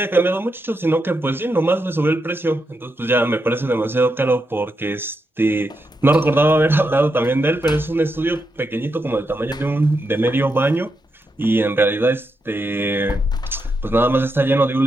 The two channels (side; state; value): both; normal; correlation 0.84